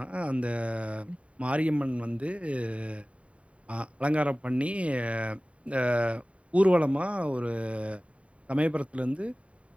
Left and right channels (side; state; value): left; late; 0.064 ms